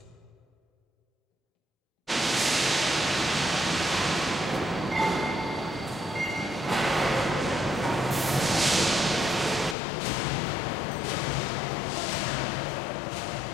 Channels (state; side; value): drops out; right; at 9.8 s